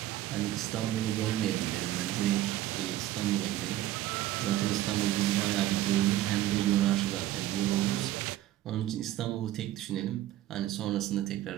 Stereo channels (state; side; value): quieter; left; 14.2 dB